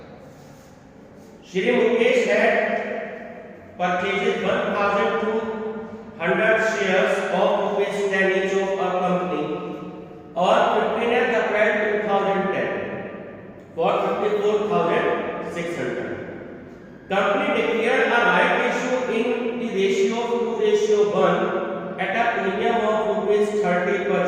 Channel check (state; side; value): identical; both; correlation 1.00